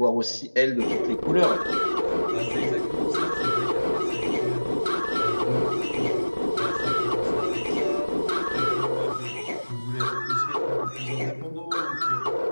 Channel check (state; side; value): inverted; both; correlation -1.00